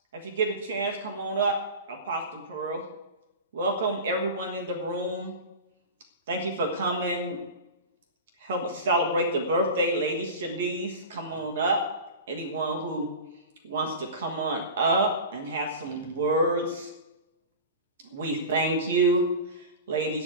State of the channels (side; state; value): both; inverted; correlation -0.31